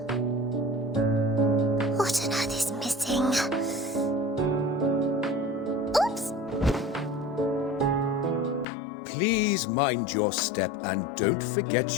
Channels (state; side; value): drops out; right; at 8.7 s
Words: What on earth is missing? Oops! Please mind your step and don't forget